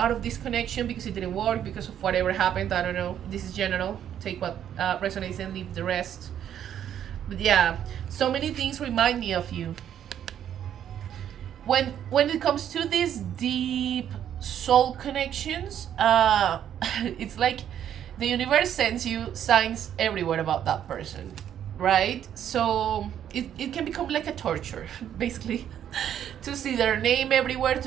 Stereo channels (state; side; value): quieter; left; 9.9 dB